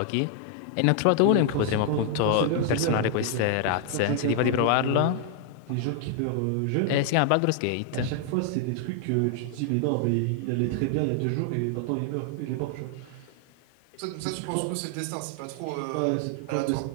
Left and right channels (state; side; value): different; both; correlation 0.00